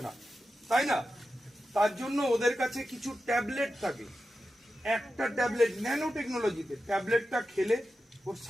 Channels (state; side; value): normal; both; correlation 0.91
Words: না, তাই না? তার জন্য ওদের কাছে কিছু ট্যাবলেট থাকে, একটা ট্যাবলেট ন্যানো টেকনোলজিতে, ট্যাবলেটটা খেলে ওর